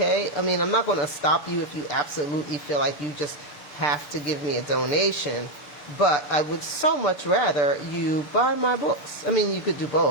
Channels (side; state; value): right; late; 6.8 ms